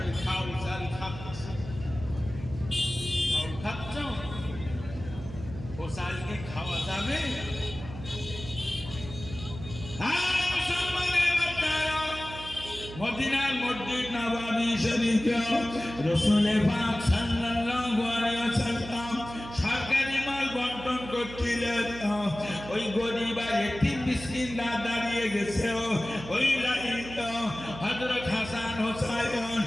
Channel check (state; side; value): noise; right; hum, 12 dB below the sound